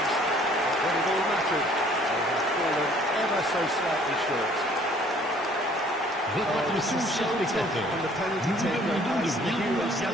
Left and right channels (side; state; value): both; normal; correlation 0.57